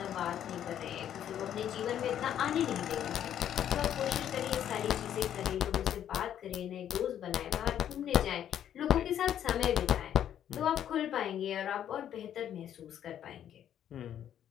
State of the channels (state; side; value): quieter; right; 10.2 dB